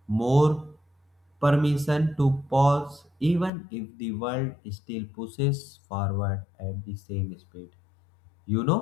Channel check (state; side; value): drops out; right; at 3.5 s